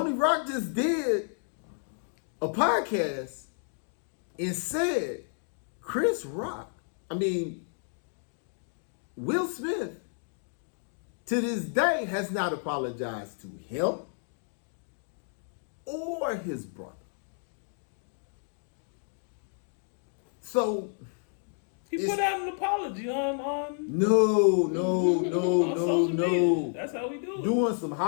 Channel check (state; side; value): silent; right; 57 dB below the other